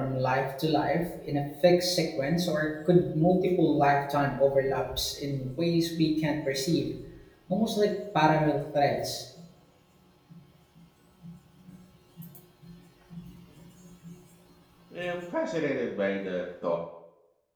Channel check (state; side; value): identical; both; correlation 1.00